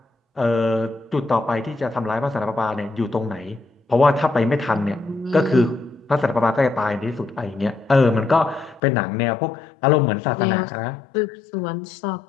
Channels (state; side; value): drops out; right; at 8.8 s